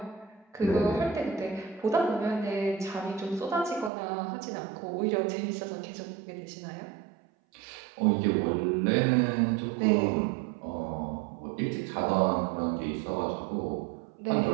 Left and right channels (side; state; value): left; drops out; at 3.9 s